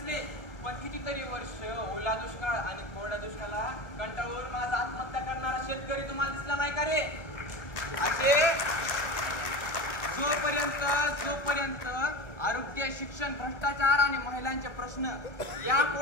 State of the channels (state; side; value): late; right; 1.4 ms